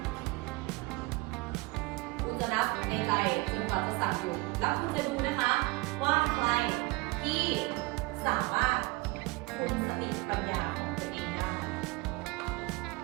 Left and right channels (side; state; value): left; quieter; 24.1 dB